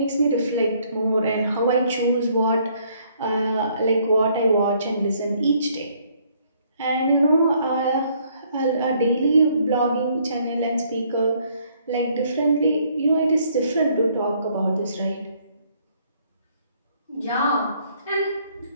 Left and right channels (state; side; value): inverted; both; correlation -0.66